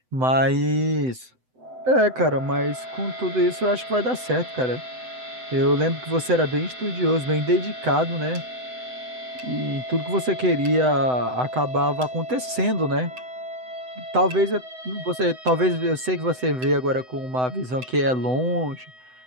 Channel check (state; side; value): late; left; 7.9 ms